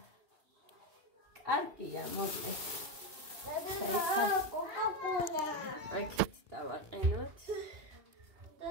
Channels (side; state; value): left; late; 2.8 ms